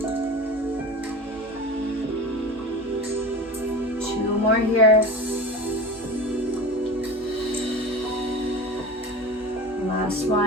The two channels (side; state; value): both; normal; correlation 0.32